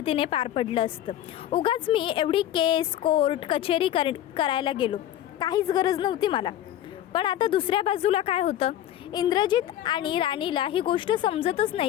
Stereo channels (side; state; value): right; quieter; 12.0 dB